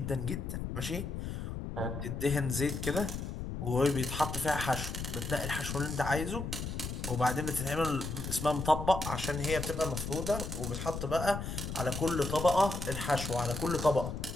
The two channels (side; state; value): left; noise; rumble, 5 dB below the sound